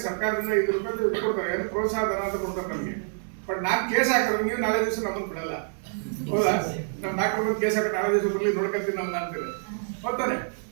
ಸರ್ಕಾರದಿಂದ ₹5 ಕೊಡ್ತಾರೆ, ಏನು ಪ್ರೋತ್ಸಾಹ ಧನ ಅಂತ ಕೊಡ್ತಾರೆ ನಮಗೆ. ಬಟ್ ನಾನು ಕೇಸ್ ಹಾಕಿದ್ರೆ ನೀವು ನಾಳೆ ದಿವಸ ನಮ್ಮನ್ನು ಬಿಡಲ್ಲ, ಹೌದಾ? ನಮ್ಮ ಡಾಕ್ಟರ್ ಬಂದು ಕೇಸ್ ಹಾಕಿ ನಾಳೆ ದಿವಸ ಬರಲಿ, ನೋಡ್ಕೊಳ್ತೀನಿ ನಮ್ಗೆ ಅಂತೀವಿ, ಹೋಗ್ತಾನೆ.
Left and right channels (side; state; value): left; silent; digital silence